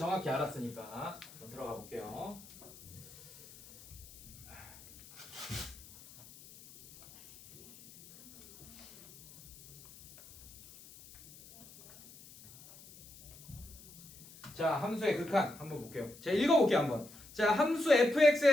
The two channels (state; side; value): noise; left; hiss, 19 dB below the sound